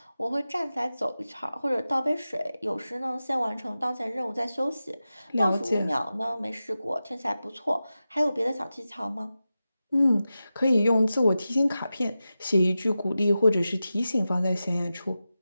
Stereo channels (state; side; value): inverted; both; correlation -0.93